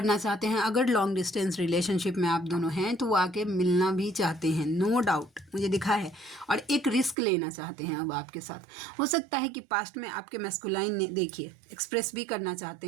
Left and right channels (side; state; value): left; drops out; at 7.2 s